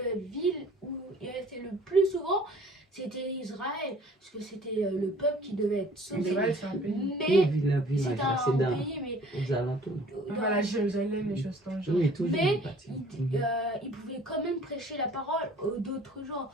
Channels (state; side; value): normal; both; correlation 0.52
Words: ville où il restait le plus souvent, c'était Israël, parce que c'était le peuple qui devait être sauvé. Israël c'est un pays. Et Mais village, c'est là, un c'est dans, pays, mais aux alentours. Voilà, Jérusalem, les choses dans le genre. Oui, toujours. Mais une partie. il pouvait quand même prêcher la parole aux d'autres gens.